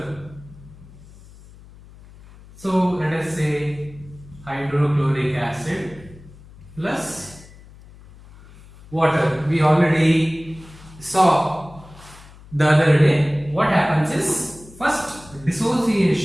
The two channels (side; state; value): left; noise; hum, 21 dB below the sound